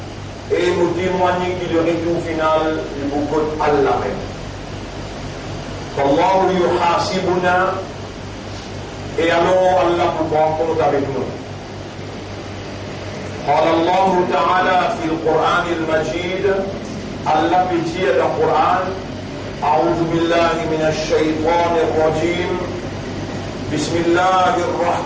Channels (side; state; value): both; identical; correlation 1.00